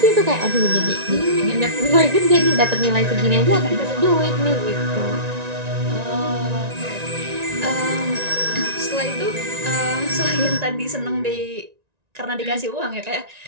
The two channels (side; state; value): left; late; 1.9 ms